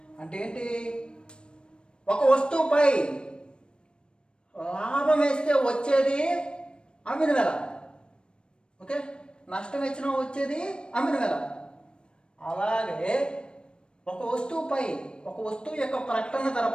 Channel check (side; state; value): right; late; 0.054 ms